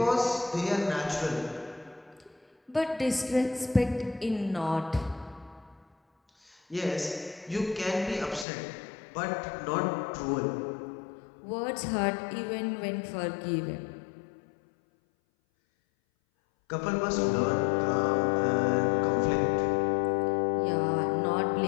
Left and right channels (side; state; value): right; drops out; at 8.5 s